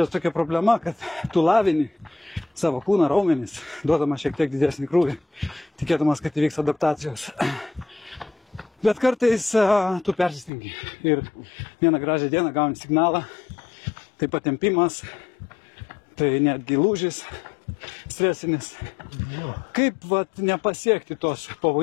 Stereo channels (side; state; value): right; drops out; at 10.5 s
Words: su tokia problema, kad tu lavini savo kūną, raumenis, duodama šiek tiek didesnį krūvį, tikėdamas, kad įvyks adaptacijos. Bet kartais tu persistengi ir vieną gražią dieną gauni signalą, tai patempimas, tai netgi lūžis stresinis. Kaip nepasiekti tos